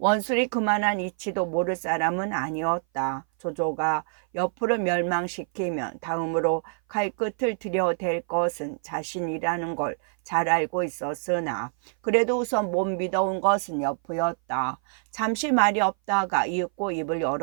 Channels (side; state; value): left; silent; 58 dB below the other